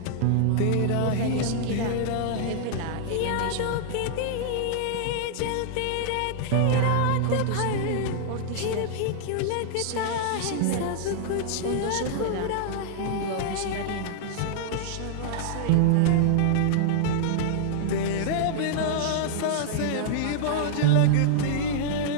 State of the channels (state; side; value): different; both; correlation -0.01